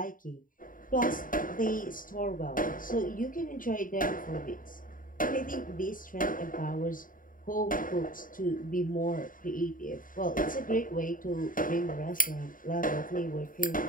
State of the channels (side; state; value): right; late; 0.40 ms